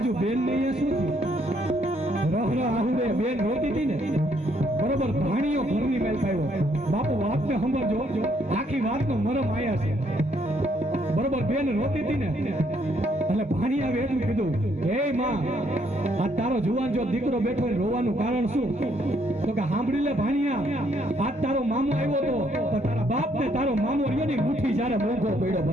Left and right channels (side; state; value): both; normal; correlation 0.70